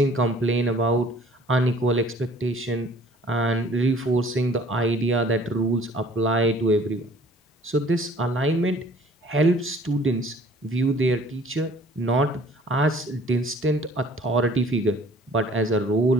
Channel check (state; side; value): normal; both; correlation 0.53